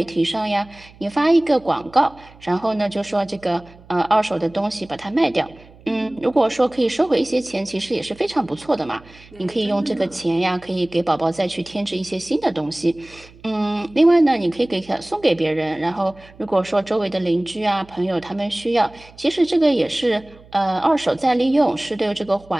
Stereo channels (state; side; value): noise; right; hum, 24 dB below the sound